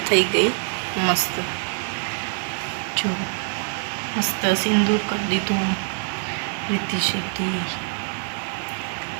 ગઈ મસ્ત જો મસ્ત સિંદૂર કરી દીધું રીતિ સિદ્ધિ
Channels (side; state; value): left; silent; 59 dB below the other